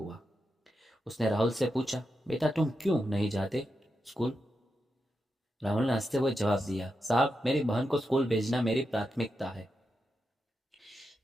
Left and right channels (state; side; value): normal; both; correlation 0.87